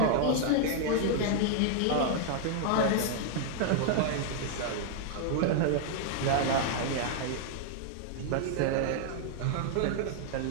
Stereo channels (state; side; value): different; both; correlation 0.00